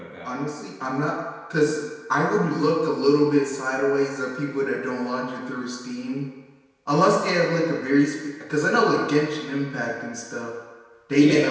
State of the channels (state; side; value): identical; both; correlation 1.00